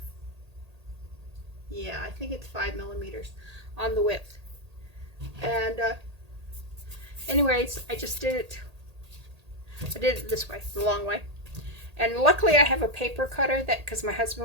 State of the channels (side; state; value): left; late; 1.8 ms